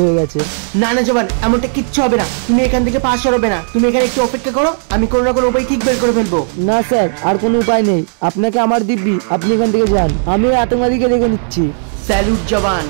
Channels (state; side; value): silent; left; digital silence